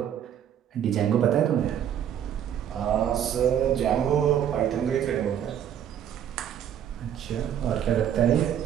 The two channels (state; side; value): quieter; left; 9.7 dB